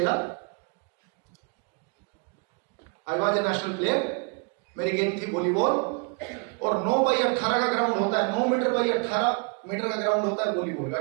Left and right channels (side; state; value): left; quieter; 35.2 dB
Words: I was a national player. मेरी गेम थी वॉलीबॉल और 9x18 का ग्राउंड होता है, 9 मीटर बाई 18 मीटर का ग्राउंड होता है वॉलीबॉल का।